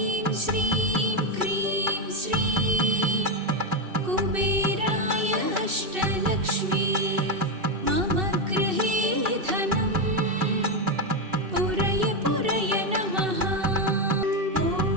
श्रीं क्रीं श्रीं कुबेराय अष्टलक्ष्मी मम गृहे धनं पुरय पुरय नमः। ॐ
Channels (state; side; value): late; left; 2.6 ms